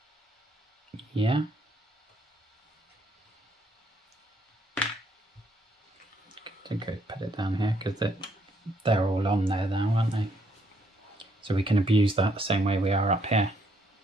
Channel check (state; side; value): normal; both; correlation 0.71